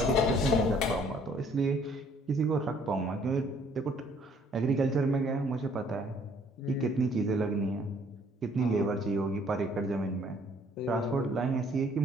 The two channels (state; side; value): normal; both; correlation 0.61